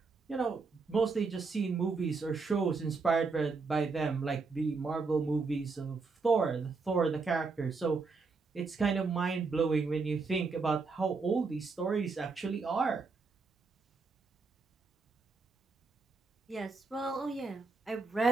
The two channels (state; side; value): quieter; left; 4.3 dB